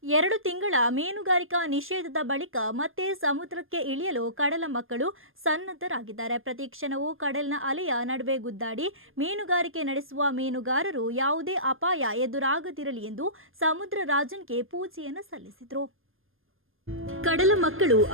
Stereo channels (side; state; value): left; late; 0.60 ms